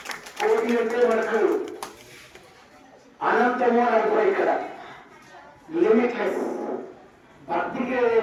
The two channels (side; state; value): both; identical; correlation 1.00